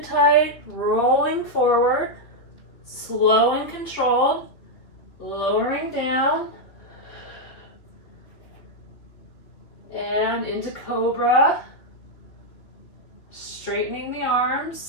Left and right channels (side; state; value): right; late; 2.9 ms